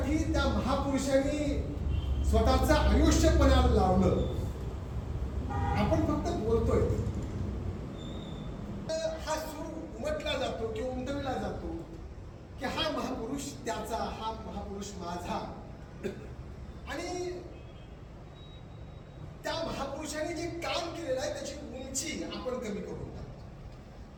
त्या महापुरुषांनी स्वतःचं आयुष्य पणाला लावलं. आपण फक्त बोलतोय, हा सूर उमटला जातो किंवा उमटविला जातो की हा महापुरुष त्याचा, हा महापुरुष माझा. आणि त्या महापुरुषांनी जे काम केलेलं आहे त्याची उंची आपण कमी करून टाकतो.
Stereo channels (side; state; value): both; identical; correlation 1.00